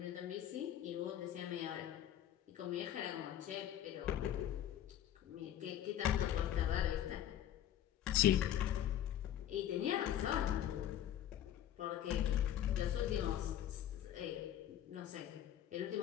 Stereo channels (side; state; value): right; quieter; 11.2 dB